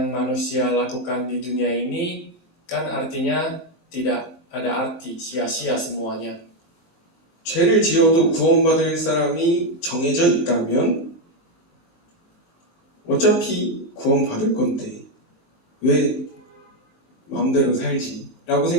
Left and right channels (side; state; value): right; late; 23 ms